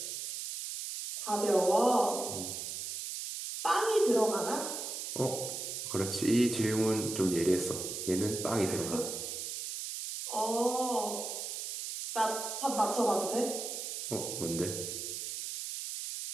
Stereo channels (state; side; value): noise; right; hiss, 5 dB below the sound